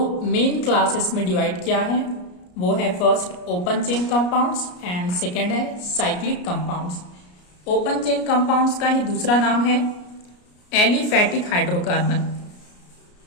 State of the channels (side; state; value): right; late; 33 ms